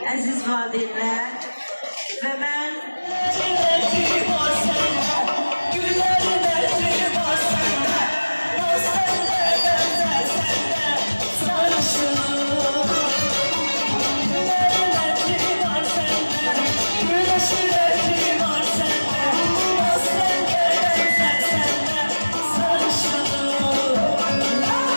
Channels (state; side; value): inverted; both; correlation -1.00